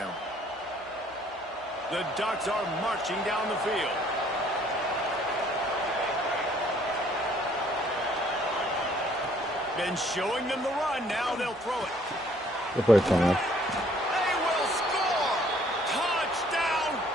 The Ducks are marching down the field. Been showing them the run. Now they'll throw it. Good play, Thomas. They will score! Touchdown,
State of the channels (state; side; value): noise; right; hum, 29 dB below the sound